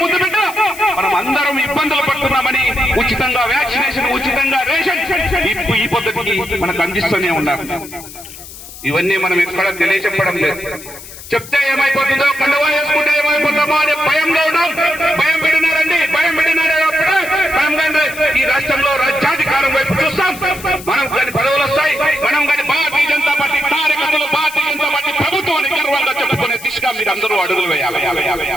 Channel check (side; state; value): left; noise; hiss, 15 dB below the sound